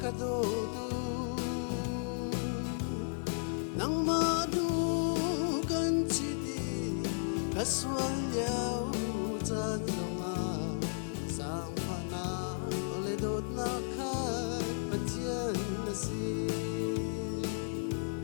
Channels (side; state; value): right; silent; digital silence